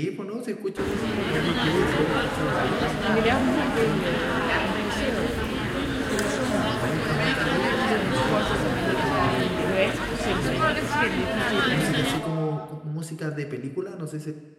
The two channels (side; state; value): both; identical; correlation 1.00